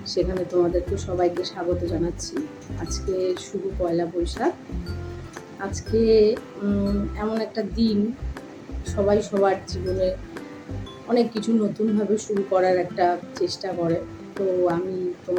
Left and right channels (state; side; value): identical; both; correlation 1.00